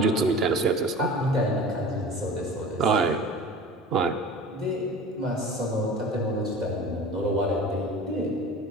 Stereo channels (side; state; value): both; normal; correlation 0.38